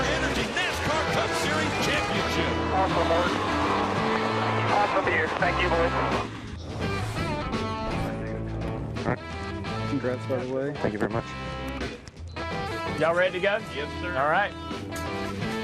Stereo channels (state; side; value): identical; both; correlation 1.00